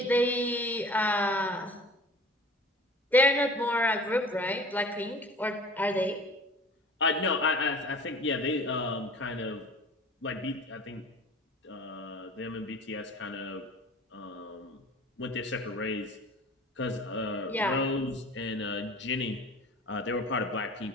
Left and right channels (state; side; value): normal; both; correlation 0.43